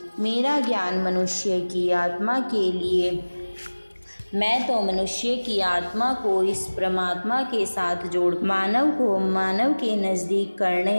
मेरा ज्ञान मनुष्य की आत्मा के लिए, मैं तो मनुष्य की आत्मा को इस परमात्मा के साथ जोड़ मानव को मानव के नज़दीक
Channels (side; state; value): both; inverted; correlation -1.00